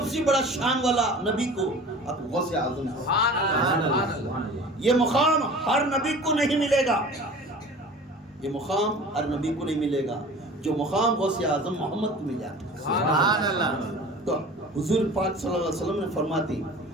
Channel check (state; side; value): normal; both; correlation 0.41